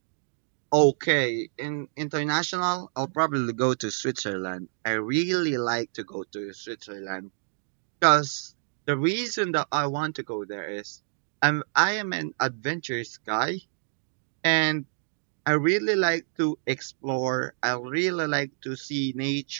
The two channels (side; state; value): left; silent; digital silence